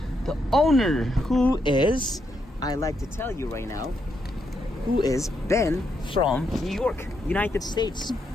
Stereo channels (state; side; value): normal; both; correlation 0.79